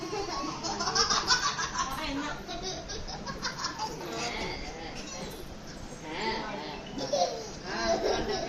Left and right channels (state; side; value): identical; both; correlation 1.00